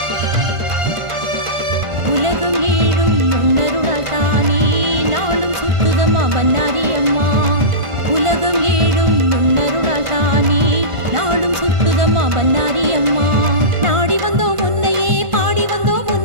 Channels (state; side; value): late; left; 1.5 ms